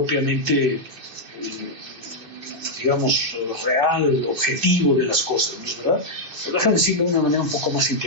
digamos, real, objetivo de las cosas, ¿no es verdad? Pero déjame decirlo de una manera un poco más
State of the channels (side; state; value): left; late; 2.5 ms